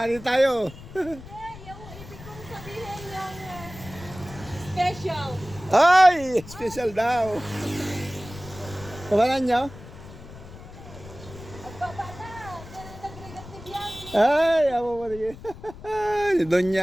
tayo. Yung ibig kong sabihin yung special. Ay! Special daw. Kabalan nyo? Ang baba na. Nag-regat ni Bianchi. Ay! Ako mo rin.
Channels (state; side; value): noise; left; rumble, 16 dB below the sound